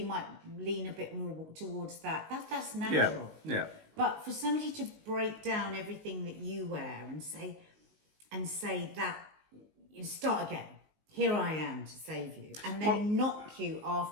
might lean a bit more towards that. That's natural. Yeah. But for somebody to break down everything that you wear and say that, you start again. Here I am to save you, and then knock you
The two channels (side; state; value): left; late; 19 ms